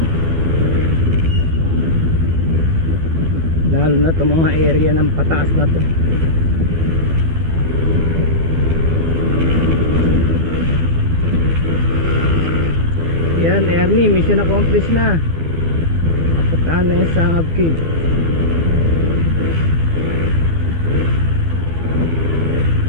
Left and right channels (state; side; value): late; left; 12 ms